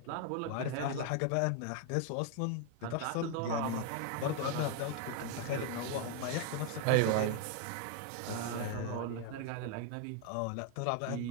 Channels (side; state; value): both; different; correlation 0.00